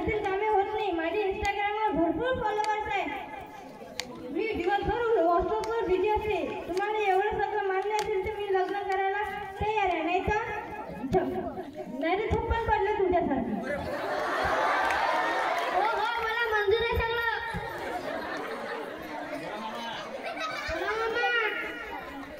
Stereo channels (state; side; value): identical; both; correlation 1.00